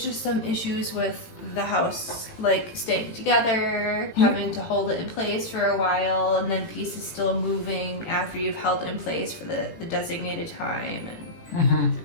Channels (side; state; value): right; late; 18 ms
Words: just some issues with the house, like staying together, having to hold it in place for a while, and then pieces still moving after you've held it in place for the designated time, and